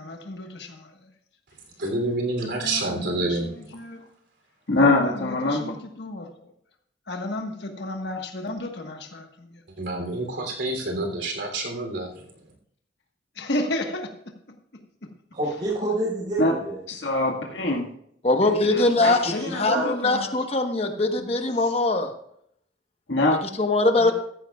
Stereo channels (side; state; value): both; normal; correlation 0.23